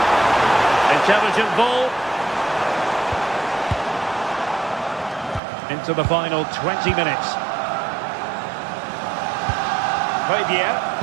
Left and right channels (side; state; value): left; drops out; at 5.4 s